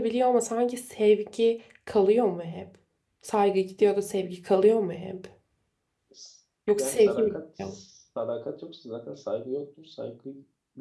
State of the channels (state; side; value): identical; both; correlation 1.00